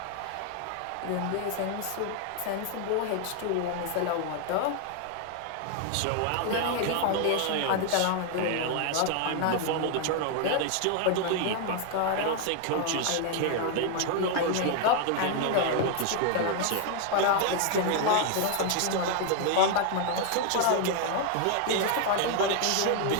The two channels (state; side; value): different; both; correlation 0.00